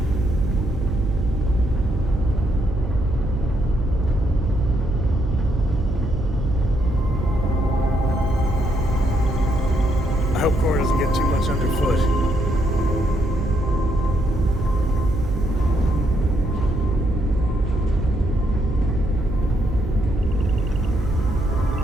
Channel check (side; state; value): right; noise; hum, 5 dB below the sound